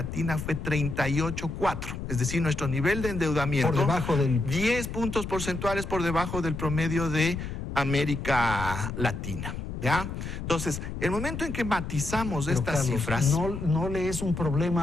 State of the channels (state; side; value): noise; left; rumble, 6 dB below the sound